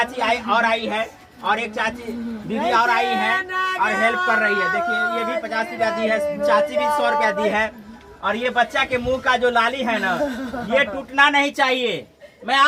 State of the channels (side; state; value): both; identical; correlation 1.00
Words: आई है और एक चाची दीदी और आई है और हेल्प कर रही है। देखिए ये भी 50 रुपया दी है, चाची भी 100 रुपया दी है। और ये बच्चा के मुंह का जो लाली है ना, ये टूटना नहीं चाहिए। मैं